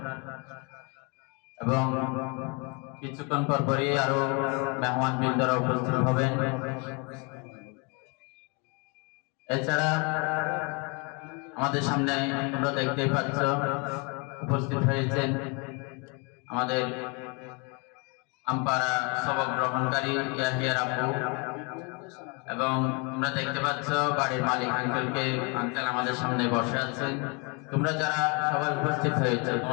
এবং কিছুক্ষণ পরপরই আরো মেহমান বৃন্দরা উপস্থিত হবেন। এছাড়া আমাদের সামনে তোমরা দেখতেই পাচ্ছ উপস্থিত হয়েছেন আমাদের আমপাড়া সবক গ্রহণকারী ইয়াহিয়ার আপু, এবং তোমরা দেখতে পাচ্ছ বাড়ির মালিক আঙ্কেল আমাদের সামনে বসে আছেন। তোমরা যারা সবাই উপস্থিত হয়েছে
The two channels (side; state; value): right; quieter; 32.0 dB